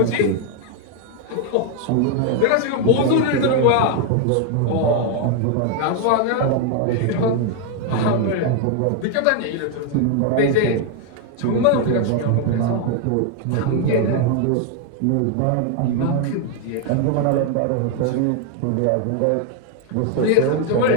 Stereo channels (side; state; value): both; different; correlation 0.01